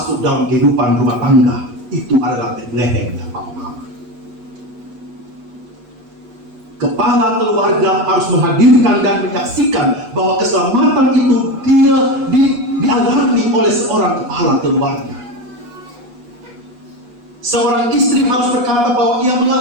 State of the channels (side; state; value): left; late; 8.3 ms